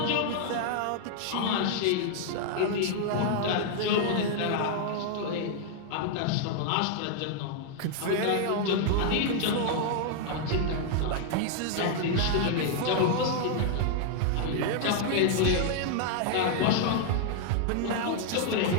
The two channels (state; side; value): different; both; correlation 0.00